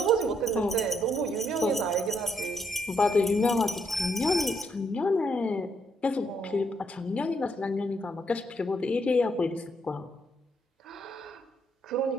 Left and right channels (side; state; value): both; normal; correlation 0.75